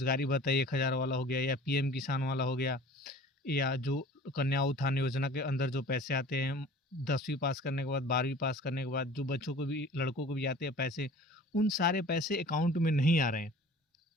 भत्ता 1,000 वाला हो गया, या पीएम किसान वाला हो गया, या जो कन्या उत्थान योजना के अंदर जो पैसे आते हैं 10वीं पास करने के बाद, 12वीं पास करने के बाद, जो बच्चों को भी, लड़कों को भी आते हैं पैसे, उन सारे पैसे अकाउंट में नहीं आ रहे हैं।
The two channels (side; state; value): both; normal; correlation 0.45